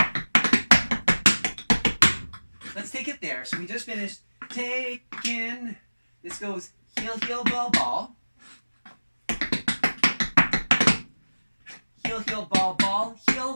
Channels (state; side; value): inverted; both; correlation -1.00